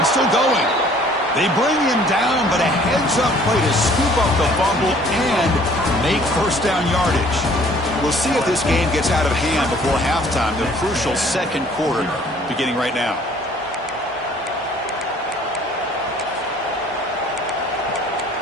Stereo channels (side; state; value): both; normal; correlation 0.56